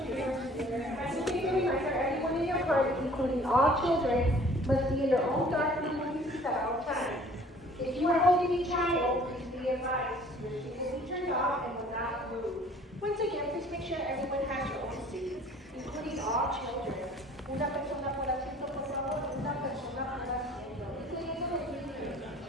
Everyone in your party, including all children, must be in their own dark room at all times. If you are holding a child, please be advised. Your seat will be turned off and will not move. Once again, please make sure everyone has your own seat, including all children. Una persona por asiento, por favor, una persona por asiento. Incluyendo los niños.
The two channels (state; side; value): normal; both; correlation 0.52